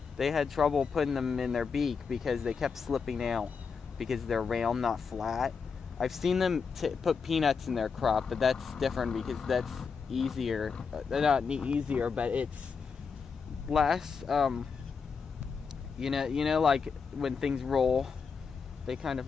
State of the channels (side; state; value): right; quieter; 5.6 dB